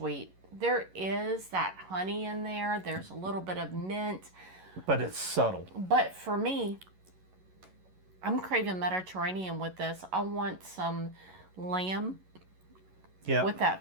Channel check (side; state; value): left; late; 11 ms